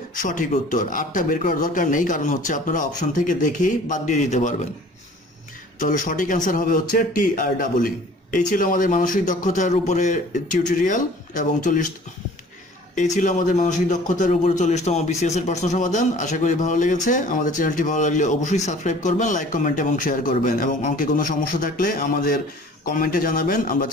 সঠিক উত্তর। আটটা বের করার দরকার নেই, কারণ হচ্ছে আপনারা অপশন থেকে দেখেই বাদ দিয়ে দিতে পারবেন। তাহলে সঠিক অ্যান্সার হবে হচ্ছে TREE। এই ছিল আমাদের মানসিক দক্ষতার উপরে টিউটোরিয়াল এবং 40তম BCS এর প্রশ্ন সমাধান। আশা করি ভালো লেগেছে। আমাদের চ্যানেলটি ভালো লাগলে অবশ্যই সাবস্ক্রাইব করবেন, লাইক, কমেন্ট এবং শেয়ার করবেন, এবং অঙ্কে কোনো সমস্যা থাকলে আমাদের কমেন্টে জানাবেন, আমরা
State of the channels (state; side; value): normal; both; correlation 0.49